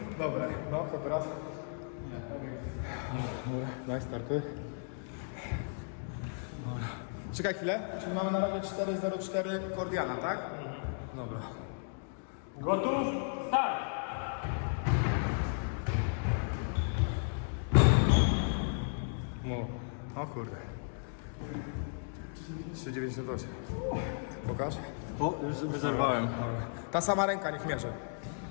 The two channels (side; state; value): right; silent; digital silence